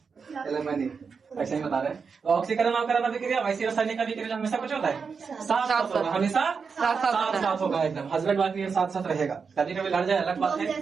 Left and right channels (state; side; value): quieter; left; 5.5 dB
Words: एलिमनी, ऐसे ही बता रहे। तो ऑक्सीकरण अवकरण अभिक्रिया वैसी रासायनिक अभिक्रिया हमेशा कुछ होता है साथ साथ होगा, हमेशा साथ साथ होगा, एकदम हस्बैंड वाइफ ये साथ साथ रहेगा। कभी कभी लड़ जाए अलग बात है।